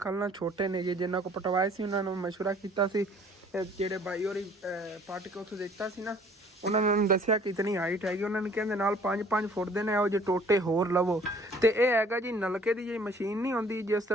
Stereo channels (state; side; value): normal; both; correlation 0.55